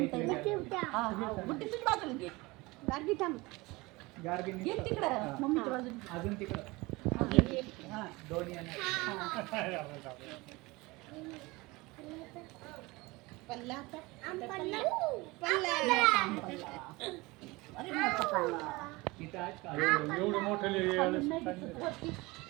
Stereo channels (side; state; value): left; quieter; 22.9 dB